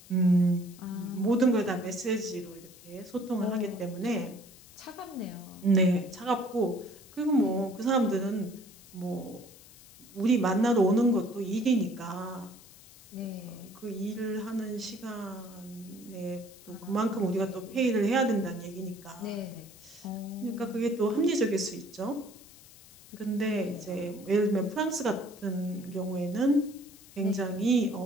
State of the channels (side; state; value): left; noise; hiss, 21 dB below the sound